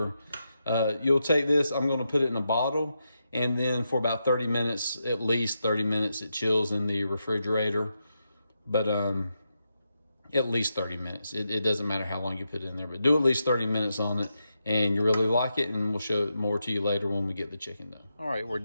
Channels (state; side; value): inverted; both; correlation -0.85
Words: You'll take this, I'm gonna put it in a bottle, and then for about 30 minutes, at least 30 minutes, it chills in the refrigerator. But at least 30 minutes. It doesn't matter how long you put it in there, but do at least 30 minutes on it, and you really like it, and we'll show it more to you later when we get the chicken done. All right, we're